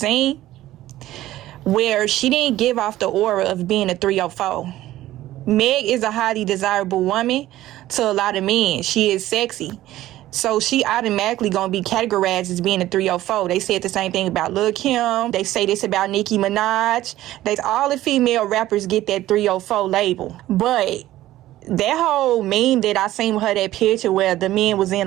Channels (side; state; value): left; quieter; 14.9 dB